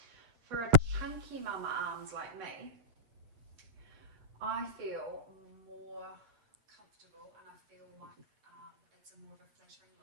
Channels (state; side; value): late; left; 8.4 ms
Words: for a chunky mama arms like me, I feel more comfortable and I feel like it's a more of a flattering